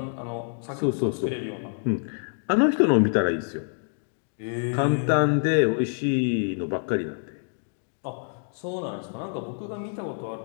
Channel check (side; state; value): right; silent; digital silence